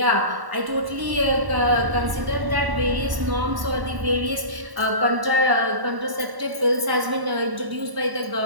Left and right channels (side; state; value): left; late; 1.1 ms